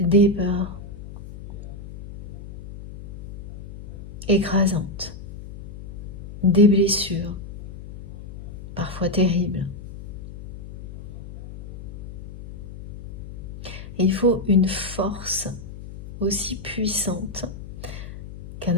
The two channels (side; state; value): left; noise; hum, 11 dB below the sound